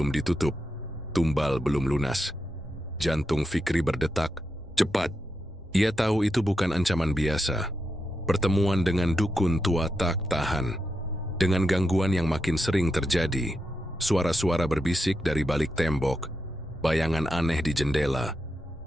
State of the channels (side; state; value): both; normal; correlation 0.85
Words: ditutup, tumbal belum lunas. Jantung Fikri berdetak cepat. Ia tahu itu bukan ancaman biasa. Pertemuan dengan dukun tua tak tahan. Dengan gangguan yang makin sering terjadi, suara-suara berbisik dari balik tembok, bayangan aneh di jendela,